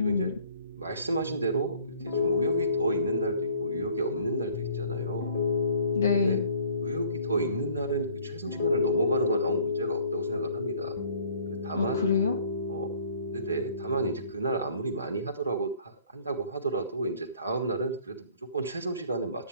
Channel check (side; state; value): both; inverted; correlation -0.55